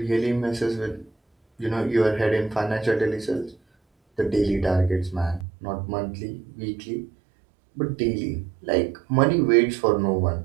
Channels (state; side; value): drops out; left; at 5.5 s